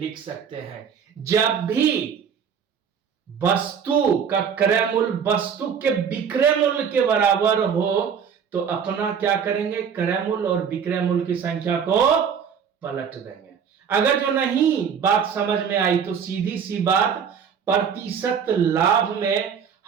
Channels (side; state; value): left; quieter; 7.2 dB